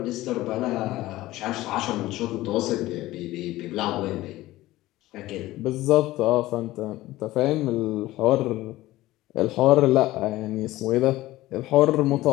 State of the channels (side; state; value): right; quieter; 17.0 dB